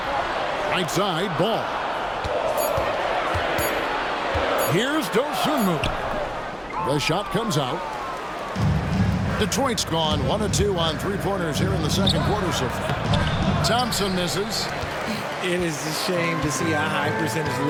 Right side, Ball. Here's Dosunmu. The shot comes out. Detroit's gone 1 of 2 on 3-pointers here in the second quarter so far. Thompson misses. It is a shame to see a high percentage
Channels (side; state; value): both; identical; correlation 1.00